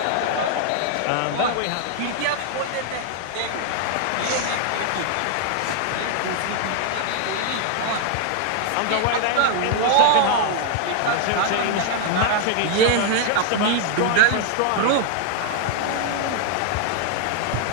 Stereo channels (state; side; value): different; both; correlation 0.00